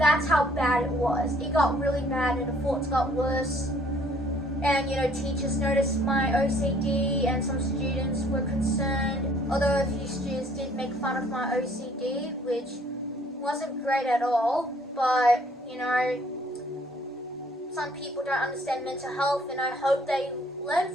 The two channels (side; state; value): both; normal; correlation 0.60